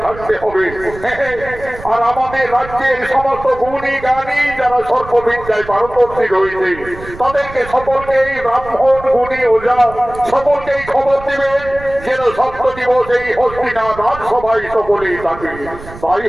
থাকতে হবে। আর আমাদের রাজ্যের সমস্ত গুণী জ্ঞানী যারা সর্ববিদ্যায় পারদর্শী রয়েছে, তাদেরকে সকলকেই ব্রাহ্মণ গুণী ওঝা সকলকেই খবর দিবেন যেন 7 দিবস এই হস্তিনাথ রাজসভায় সকলেই থাকে। তাই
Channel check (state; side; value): noise; right; rumble, 15 dB below the sound